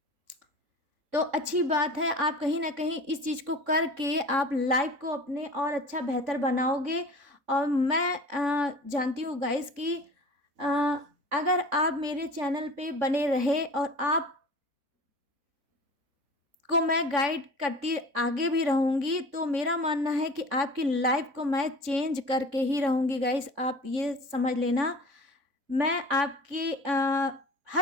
तो अच्छी बात है, आप कहीं ना कहीं इस चीज़ को करके आप लाइफ को अपने और अच्छा बेहतर बनाओगे। और मैं जानती हूँ गाइस कि अ, अगर आप मेरे चैनल पे बने रहे और आप को मैं गाइड करती आगे भी रहूँगी, तो मेरा मानना है कि आपकी लाइफ को मैं चेंज करके ही रहूँगी गाइस, आप ये समझ लेना। मैं आपकी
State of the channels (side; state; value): left; late; 3.6 ms